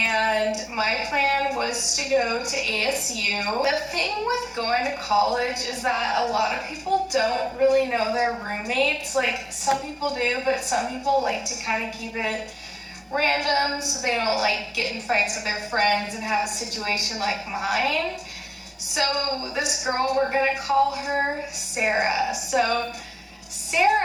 my plan was to go to ASU. The thing with going to college is that a lot of people don't really know their roommates. Like some people do, but some people like to kind of keep it random so they don't like get in fights with their friends and have a situation like mine. So this girl, we're gonna call her Sarah. So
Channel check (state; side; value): identical; both; correlation 1.00